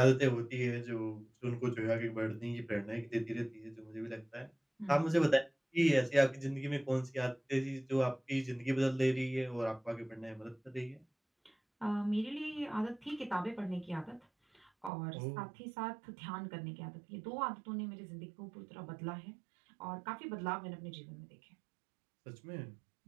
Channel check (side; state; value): left; drops out; at 14.9 s